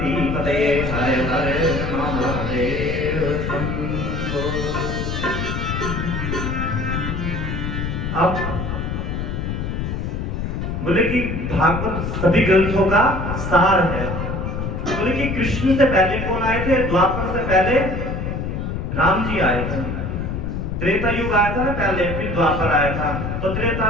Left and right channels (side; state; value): left; noise; rumble, 3 dB below the sound